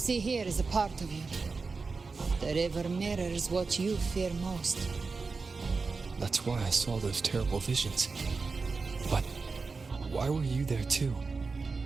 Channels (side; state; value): left; quieter; 4.4 dB